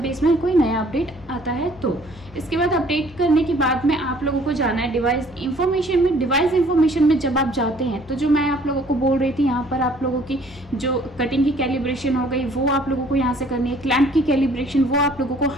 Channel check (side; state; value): both; normal; correlation 0.58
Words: इसमें कोई नया अपडेट आता है। तो इसके बाद अपडेट करने के बाद में आप लोगों को जाना है डिवाइस इन्फॉर्मेशन में। डिवाइस इन्फॉर्मेशन में जब आप जाते हैं तो जो मैं आप लोगों को बोल रही थी, यहाँ पर आप लोगों की जो कटिंग की कैलिब्रेशन हो गई वो आप लोगों को यहाँ से करनी है, क्लैंप की कैलिब्रेशन वो आप लोगों को,